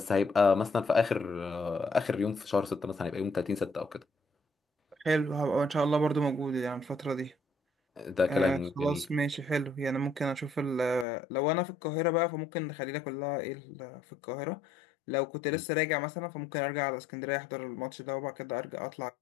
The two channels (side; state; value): right; drops out; at 11.1 s